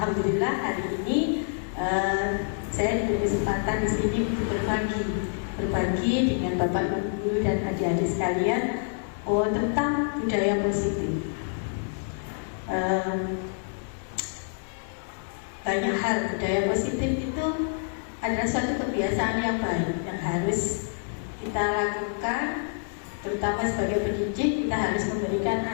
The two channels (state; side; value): silent; right; digital silence